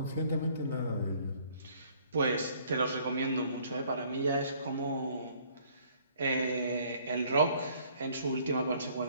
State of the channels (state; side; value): inverted; both; correlation -0.60